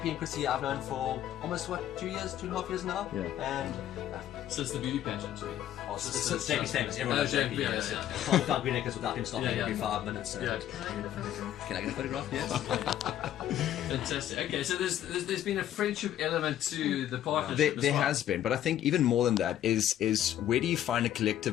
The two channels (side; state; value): right; quieter; 11.6 dB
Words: and Chrissy, I've known for almost 2.5 years now. Yeah. And since the beauty pageant, since JP's famous. Everyone knows JP. Can't without Green Acres without him stopping every 5 minutes. So. Can I get a photograph? Yes. Fantastic. Okay, so there's been a friendship element to the partnership. There has been, but I think even more than that is where do you find a